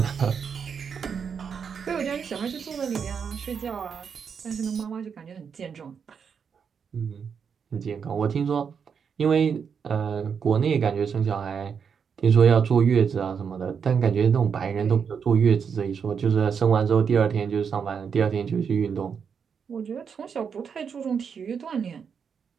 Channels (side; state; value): left; quieter; 6.7 dB